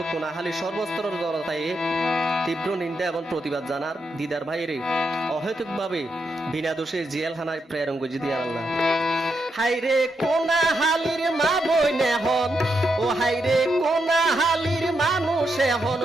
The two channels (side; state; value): both; normal; correlation 0.82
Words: কোনাহালি সর্বস্তরের জনতায় তীব্র নিন্দা এবং প্রতিবাদ জানার দিদার ভাইয়ের অহেতুকভাবে বিনা দোষে জেলখানায় প্রেরণ করে দিয়ে আল্লাহ। হাইরে কোনাহালির মা বই নেহন ও হাইরে কোনাহালির মানুষ এখন